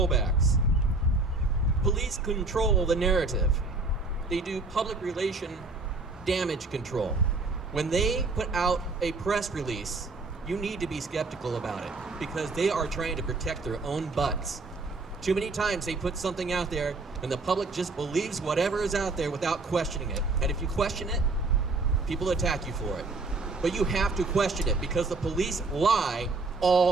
Police control the narrative. They do public relation damage control. When they put out a press release, you need to be skeptical about it because they are trying to protect their own butts. Too many times they put something out there and the public just believes whatever is out there without questioning it. And if you question it, people attack you for it. But you have to question it because the police lie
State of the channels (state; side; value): quieter; left; 3.5 dB